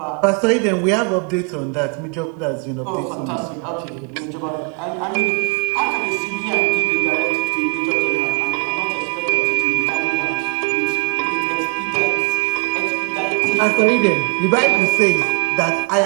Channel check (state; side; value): quieter; left; 36.7 dB